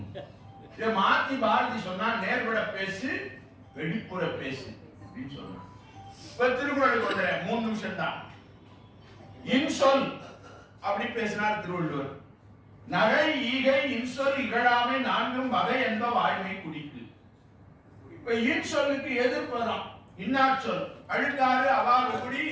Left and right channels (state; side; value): identical; both; correlation 1.00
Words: மாத்தி பாரதி சொன்னா, நேர்பட பேசு, வெளிப்புற பேசு அப்படின்னு சொன்னா. இப்ப திருக்குறளுக்கு வந்துறேன், 3 நிமிஷம் தான். இன்சொல் அப்படி பேசினார் திருவள்ளுவர். நகை ஈகை இன்சொல் இகழாமை 4 வகை என்ப வாய்மை குடிக்கு. இப்ப இன்சொல்லுக்கு எதிர்ப்பதான் இன்னாச்சொல். அழுக்காறு அவாறு குடி,